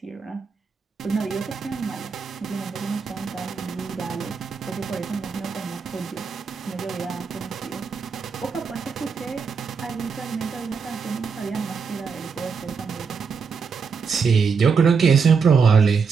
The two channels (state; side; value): quieter; left; 5.6 dB